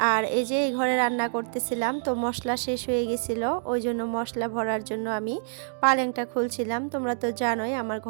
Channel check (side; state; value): left; silent; digital silence